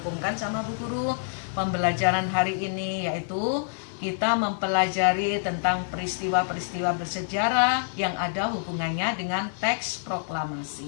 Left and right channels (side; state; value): right; silent; digital silence